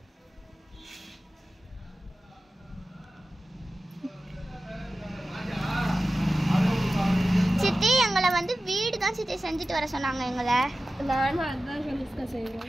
சித்தி எங்களை வந்து வீடு தான் சித்தி செஞ்சுட்டு வர சொன்னாங்க எங்களை. நானும் அதுதான் கனிஷ்கா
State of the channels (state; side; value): normal; both; correlation 0.94